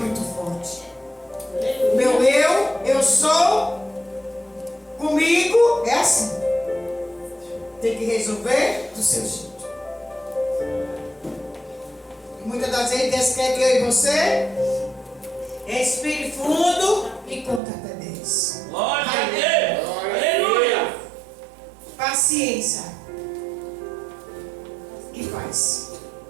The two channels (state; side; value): drops out; left; at 17.6 s